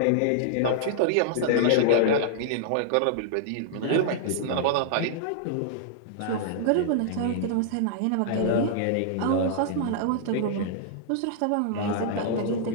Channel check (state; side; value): different; both; correlation -0.01